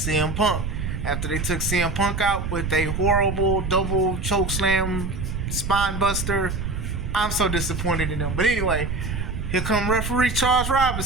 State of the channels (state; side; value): noise; right; rumble, 3 dB below the sound